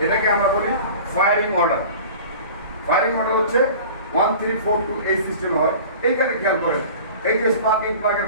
এটাকে আমরা বলি ফায়ারিং অর্ডার। ফায়ারিং অর্ডার হচ্ছে 1 3 4 2 এই সিস্টেমে হয়। এইখানে খেয়াল করেন, এই যে স্পার্কিং প্লাগের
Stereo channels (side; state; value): both; inverted; correlation -0.41